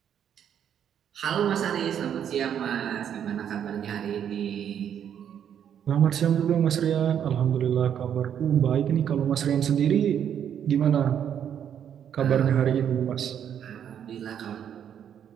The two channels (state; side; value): quieter; left; 9.0 dB